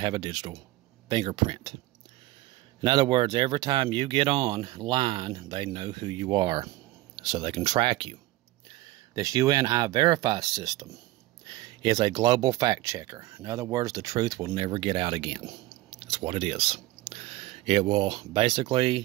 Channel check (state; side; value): quieter; left; 18.3 dB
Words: a digital fingerprint. In other words, every time you get online, they know who you are, so they can track you. This UN I-Verify system is a global fact checker. In other words, the truth will never get out again. That's what it is. It will